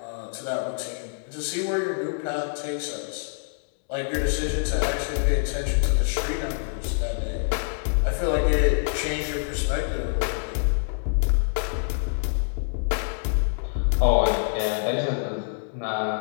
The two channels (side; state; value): right; silent; digital silence